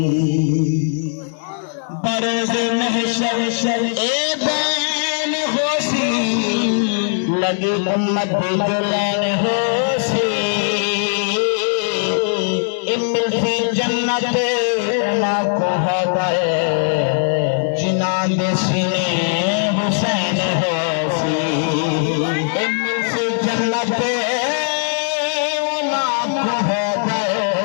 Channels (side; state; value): right; silent; digital silence